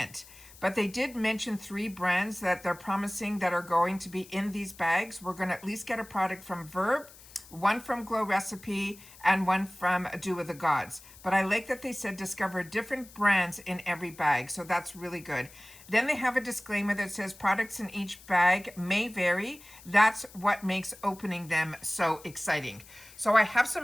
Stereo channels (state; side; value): noise; left; hiss, 21 dB below the sound